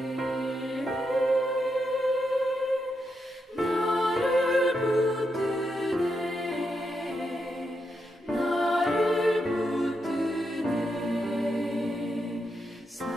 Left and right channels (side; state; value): both; normal; correlation 0.83